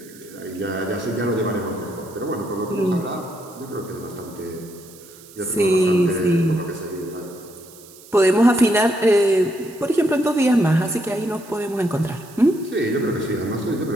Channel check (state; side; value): noise; right; hiss, 21 dB below the sound